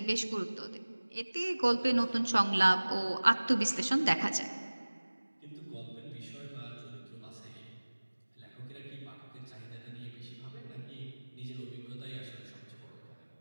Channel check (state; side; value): inverted; both; correlation -1.00